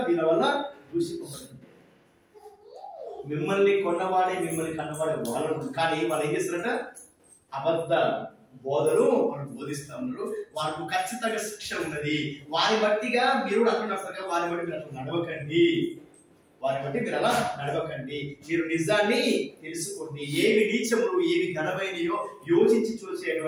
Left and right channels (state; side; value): identical; both; correlation 1.00